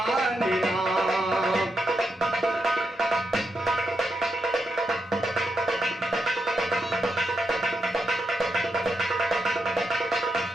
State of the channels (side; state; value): both; normal; correlation 0.84